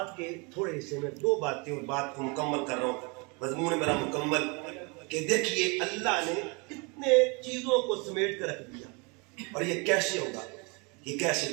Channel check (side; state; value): left; quieter; 30.4 dB